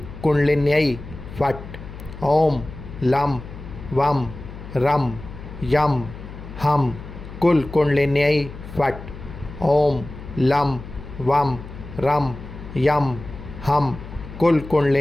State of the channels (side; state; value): left; noise; hum, 13 dB below the sound